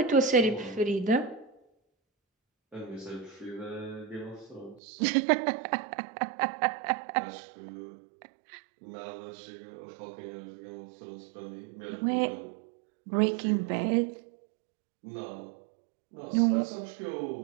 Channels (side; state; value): left; drops out; at 4.8 s